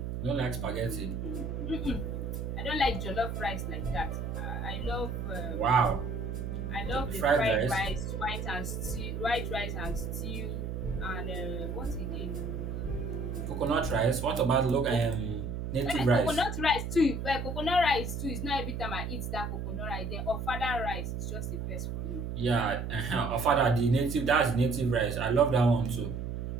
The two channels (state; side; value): noise; right; hum, 4 dB below the sound